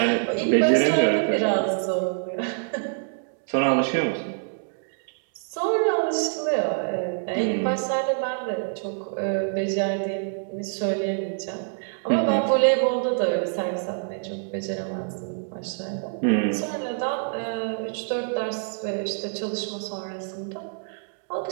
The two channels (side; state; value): left; silent; digital silence